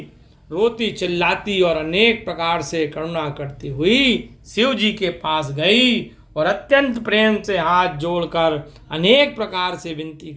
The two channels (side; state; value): both; identical; correlation 1.00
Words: रोती चिल्लाती और अनेक प्रकार से करुणा करती हुई शिव जी के पास गई और अत्यंत प्रेम से हाथ जोड़कर अनेक प्रकार से विनती